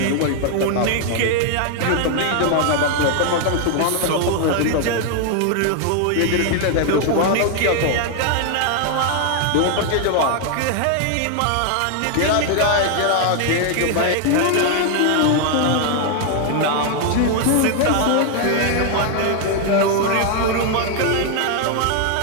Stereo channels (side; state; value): both; different; correlation 0.00